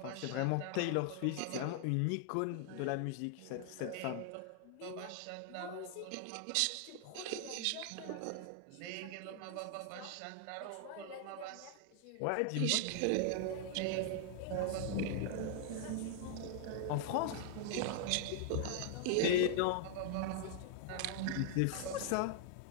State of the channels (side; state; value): both; different; correlation 0.00